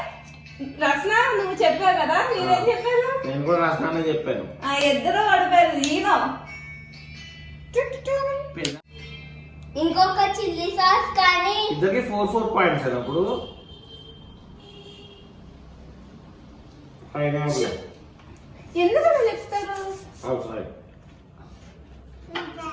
రసన నువ్వు చెప్పావు కదా, మీరేం చెప్పారు? నేను కూడా రసనానే చెప్పాను. ఇద్దరు పడిపోయారు. ఈనో ఇంకొక చిల్లీ సాస్ కానీ ఇద్దరికి 4 పాయింట్స్ అప్పుడు పైనాపిల్ ఎందుకు అలా చెప్తారు? అవుట్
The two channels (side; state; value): both; identical; correlation 1.00